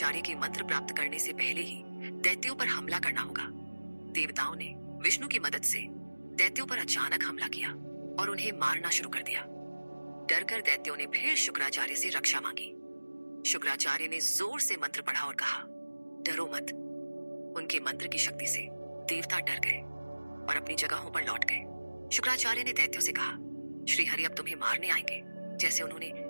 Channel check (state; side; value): inverted; both; correlation -1.00